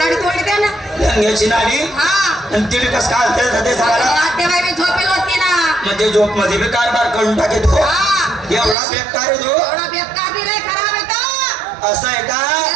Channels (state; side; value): drops out; left; at 8.8 s